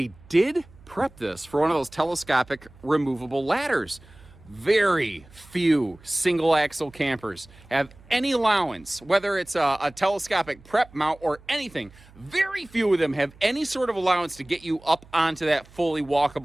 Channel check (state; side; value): noise; right; hum, 24 dB below the sound